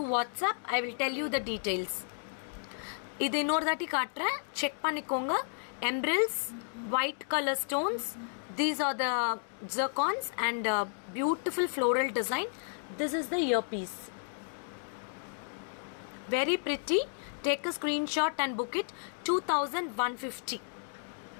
WhatsApp. I will tell you the details. இது இன்னொரு தாட்டி காட்டுறேன், check பண்ணிக்கோங்க. Emeralds, white color stones. These are the zircons and beautiful floral design. This is the earpiece. Very pretty. Take a screenshot and book it. 2150.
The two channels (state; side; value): silent; right; digital silence